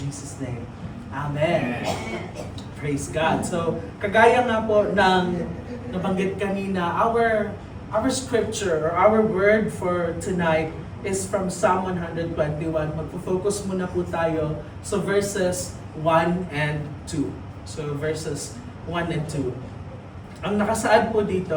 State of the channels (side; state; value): both; identical; correlation 1.00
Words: name. Amen. Praise God. So, kagaya nga po ng nabanggit kanina, our scripture or our word for tonight is from Psalm 121. Magpo-focus muna po tayo sa verses 1 and 2. So, verses 1 and 2. Ang nakasaad po